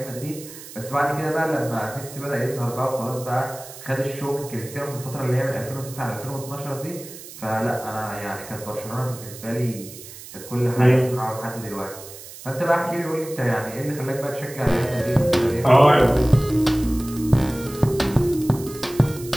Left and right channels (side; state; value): right; noise; hiss, 15 dB below the sound